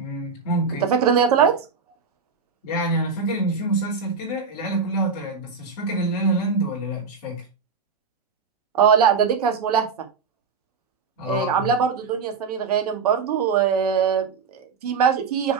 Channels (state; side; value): quieter; left; 5.4 dB